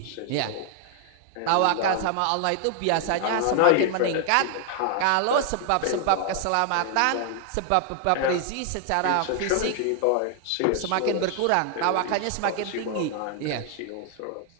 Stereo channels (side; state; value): both; different; correlation 0.00